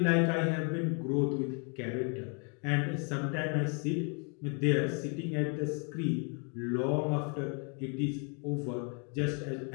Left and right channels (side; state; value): right; quieter; 37.4 dB